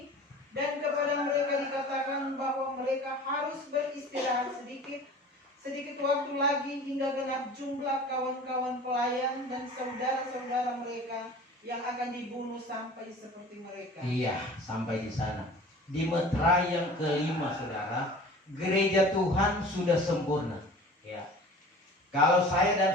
dan kepada mereka dikatakan bahwa mereka harus beristirahat sedikit waktu lagi hingga genap jumlah kawan-kawan pelayan dan saudara-saudara mereka yang akan dibunuh sampai seperti mereka. Iya, sampai di sana. Di meterai yang kelima, saudara, gereja Tuhan sudah sempurna. Ya. Kalau saya dan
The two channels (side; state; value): both; normal; correlation 0.42